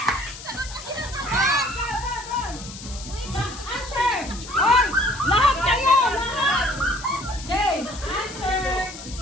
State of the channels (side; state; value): left; noise; hiss, 13 dB below the sound